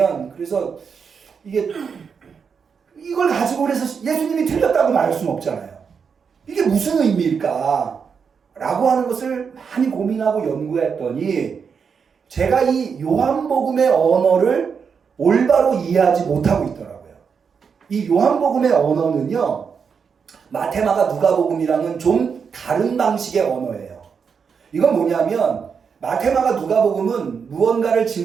그래서 이걸 가지고 그래서 예수님이 틀렸다고 말할 수는 없잖아요. 이게 무슨 의미일까? 라고 하는 것을 많이 고민하고 연구했더니 제가 이 요한복음의 언어를 올바로 이해하지 못하고 있더라고요. 이 요한복음의 언어는요, 마태마가 누가복음이랑은 좀 다른 방식의 언어예요. 이건 뭐냐면 마태마가 누가복음은 무언가를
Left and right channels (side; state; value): left; quieter; 6.2 dB